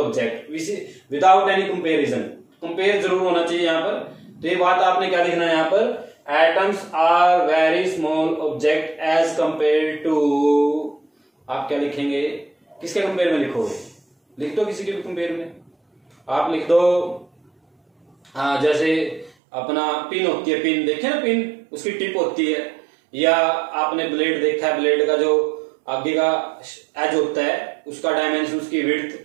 without any comparison, compare जरूर होना चाहिए यहाँ पर। तो ये बात आपने क्या लिखना है यहाँ पर, atoms are very small object as compare to, आप क्या लिखेंगे, किसके कंपेयर में लिखोगे, लिख दो किसी के भी कंपेयर में, आप लिख दो जैसे अपना पिन होती है, पिन देखे ना, पिन उसकी टिप होती है, या आपने ब्लेड देखा है, ब्लेड का जो आगे का एज होता है उसका डायमेंशन, उसकी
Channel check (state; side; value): drops out; left; at 19.3 s